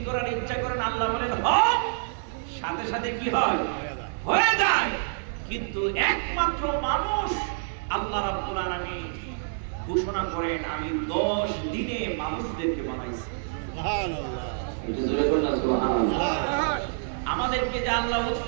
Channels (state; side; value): silent; left; 57 dB below the other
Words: করার ইচ্ছা করেন আল্লাহ বলেন হও, সাথে সাথে কি হয়? হয়ে যায়। কিন্তু একমাত্র মানুষ আল্লাহ রাব্বুল আলামিন ঘোষণা করেন আমি 10 দিনে মানুষদেরকে বানাইছি। সুবহানাল্লাহ। এটা জোরে বলুন না সুবহানাল্লাহ। আমাদেরকে যে আল্লাহ